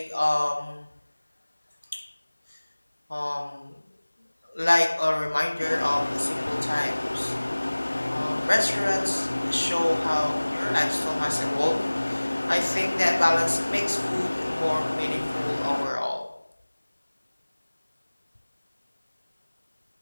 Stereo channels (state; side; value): inverted; both; correlation -1.00